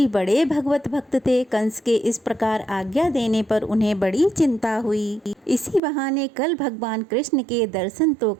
बड़े भगवत भक्त थे। कंस के इस प्रकार आज्ञा देने पर उन्हें बड़ी चिंता हुई। इसी बहाने कल भगवान कृष्ण के दर्शन तो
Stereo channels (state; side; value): drops out; left; at 5.8 s